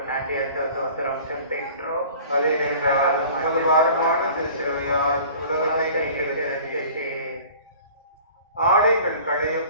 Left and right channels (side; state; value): both; inverted; correlation -0.46